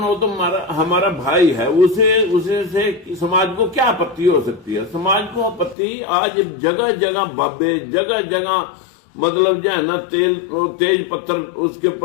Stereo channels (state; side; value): drops out; right; at 5.8 s